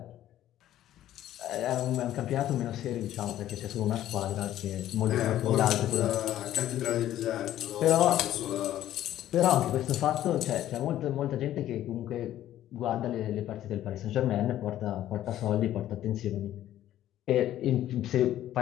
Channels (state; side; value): quieter; right; 12.7 dB